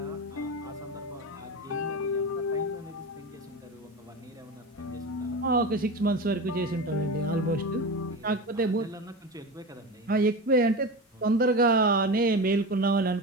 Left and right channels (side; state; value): both; normal; correlation 0.25